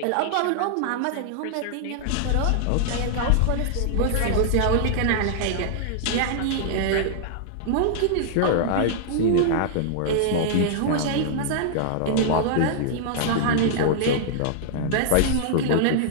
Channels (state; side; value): different; both; correlation -0.01